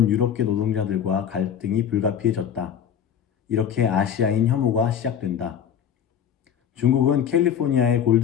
유럽계 노동자들과 갈등이 불가피해졌다. 이렇게 아시아인 혐오가 시작된다. 중국은 캘리포니아의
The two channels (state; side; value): quieter; right; 8.6 dB